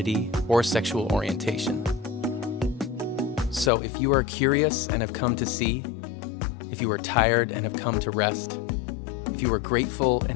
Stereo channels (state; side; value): drops out; right; at 3.7 s